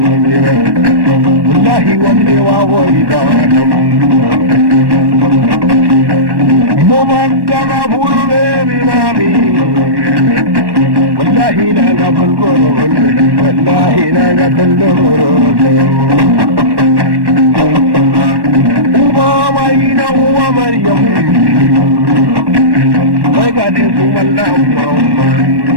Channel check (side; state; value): left; late; 1.1 ms